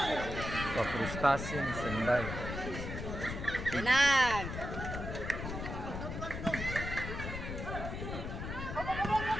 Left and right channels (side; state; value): left; noise; rumble, 6 dB below the sound